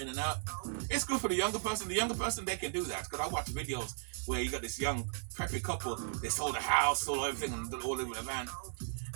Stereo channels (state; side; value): silent; left; 54 dB below the other